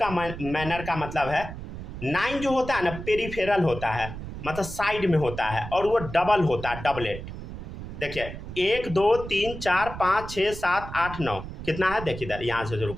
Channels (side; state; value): right; noise; rumble, 10 dB below the sound